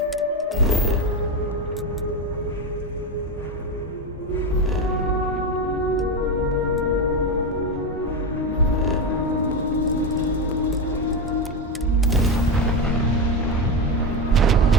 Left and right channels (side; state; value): both; normal; correlation 0.14